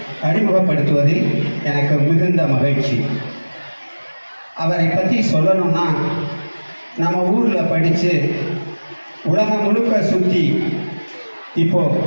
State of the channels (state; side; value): inverted; both; correlation -1.00